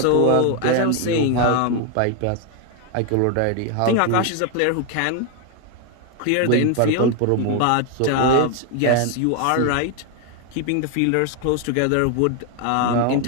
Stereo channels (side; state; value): both; different; correlation 0.01